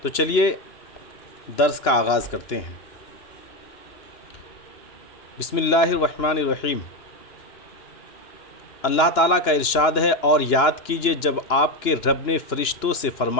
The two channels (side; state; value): right; late; 2.9 ms